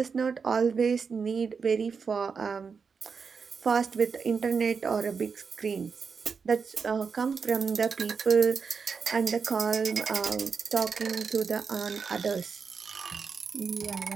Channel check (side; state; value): left; quieter; 5.6 dB